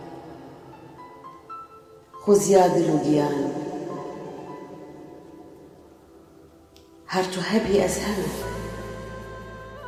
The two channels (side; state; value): both; identical; correlation 1.00